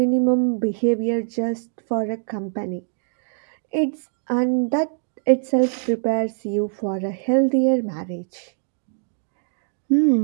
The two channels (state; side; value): silent; left; digital silence